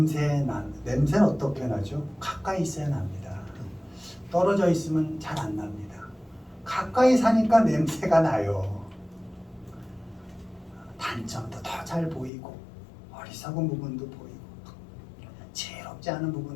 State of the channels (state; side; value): drops out; right; at 12.3 s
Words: 어떻게 나죠? 가까이 있어야 납니다. 떨어져 있으면 잘 안 납니다. 가까이 사니까 냄새가 나요. 단점도 더 잘 보이고 어리석은 부분도 보이고 지혜롭지 않은